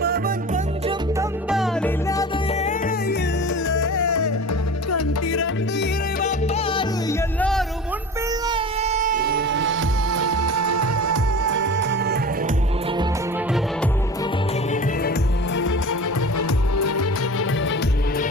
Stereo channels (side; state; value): both; normal; correlation 0.35